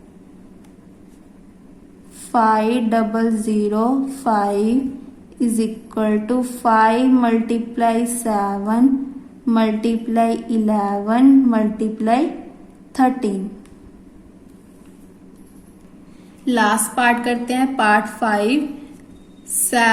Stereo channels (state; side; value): identical; both; correlation 1.00